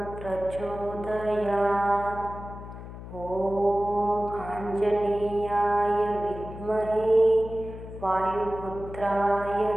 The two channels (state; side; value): noise; left; hum, 12 dB below the sound